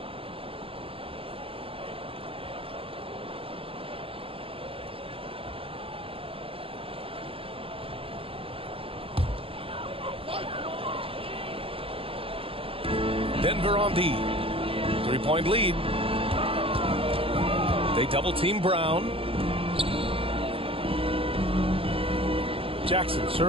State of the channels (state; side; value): late; left; 0.27 ms